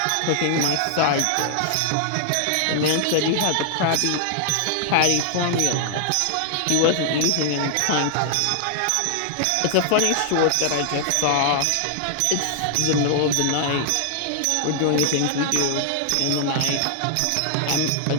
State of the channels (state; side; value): different; both; correlation -0.01